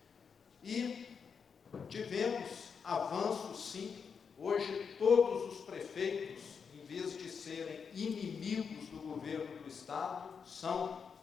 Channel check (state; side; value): quieter; right; 6.2 dB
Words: E tivemos avanços, sim. Hoje, todos os prefeitos, em vez de serem inimigos do governo do Estado, são...